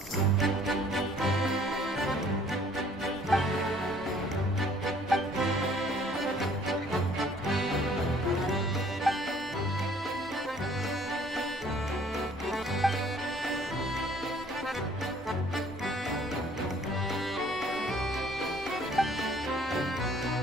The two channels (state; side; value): normal; both; correlation 0.58